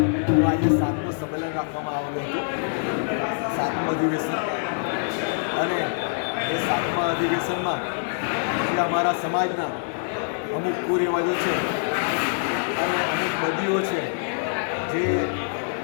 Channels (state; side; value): silent; right; digital silence